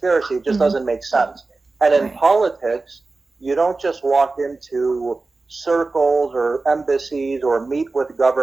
It just doesn't make sense. And in politics, you don't just walk into circles or embassies or meet with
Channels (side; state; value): left; quieter; 3.6 dB